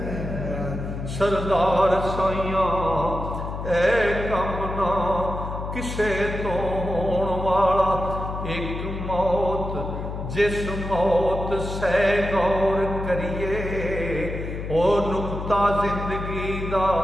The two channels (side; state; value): left; noise; hum, 6 dB below the sound